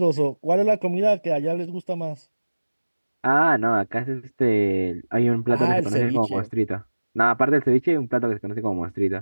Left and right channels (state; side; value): inverted; both; correlation -1.00